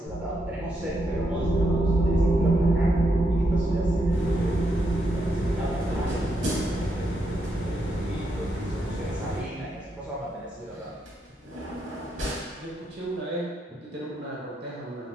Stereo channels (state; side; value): normal; both; correlation 0.81